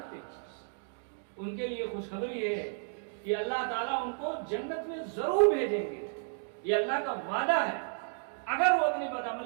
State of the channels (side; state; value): left; silent; digital silence